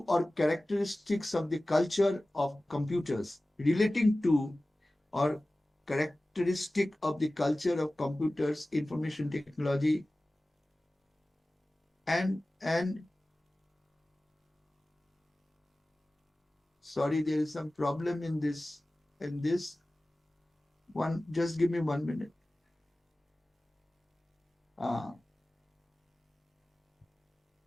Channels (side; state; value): both; normal; correlation 0.97